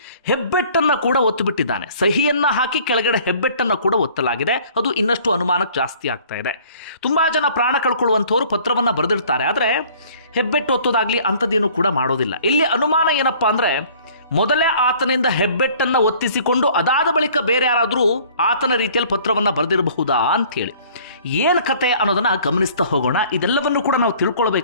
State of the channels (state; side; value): inverted; both; correlation -0.53